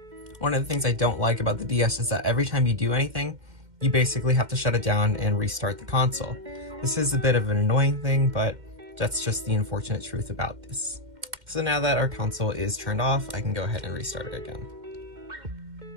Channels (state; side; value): late; left; 2.1 ms